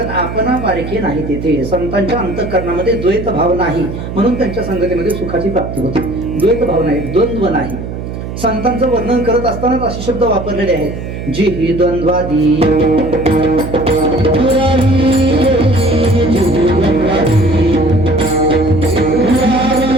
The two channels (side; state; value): right; noise; hum, 8 dB below the sound